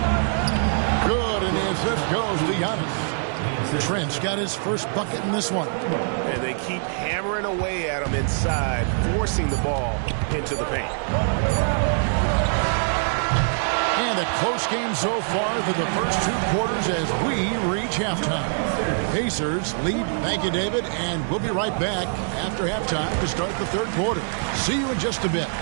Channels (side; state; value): left; silent; digital silence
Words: Good, and the assist goes to Giannis. Trent's got his first bucket in this one. And they keep hammering away at him inside, forcing the ball into the paint. And a close game so far through the first 2 quarters as we reach halftime. Pacers lead. Thank you, David. And we'll be right back after halftime to start the third quarter. See you in just a bit.